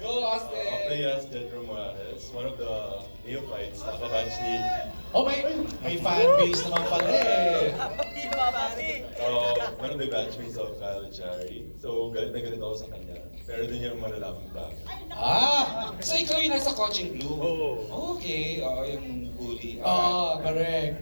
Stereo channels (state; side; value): inverted; both; correlation -1.00